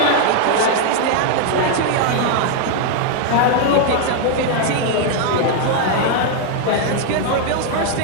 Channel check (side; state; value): both; different; correlation 0.00